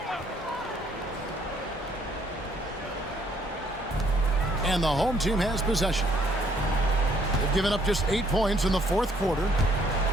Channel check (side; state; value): both; normal; correlation 0.66